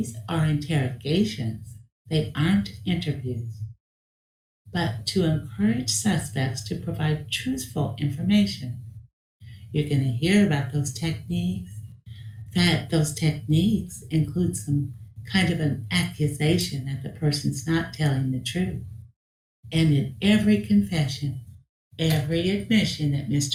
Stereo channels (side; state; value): both; identical; correlation 1.00